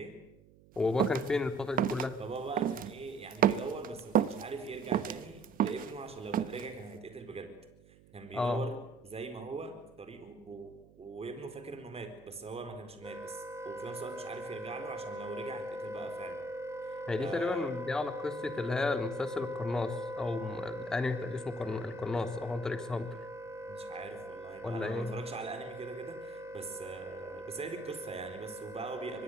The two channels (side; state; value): right; noise; hum, 24 dB below the sound